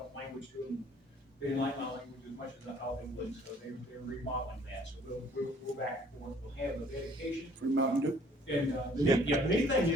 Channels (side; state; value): both; normal; correlation 0.58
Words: language to them. They didn't like my language as much as I thought they would, so they're remodeling that. So we'll back and forth. We'll have the dedication. Free Mountain Dew. And the neat thing